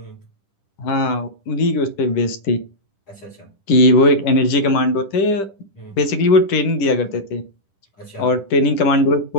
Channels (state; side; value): late; right; 10 ms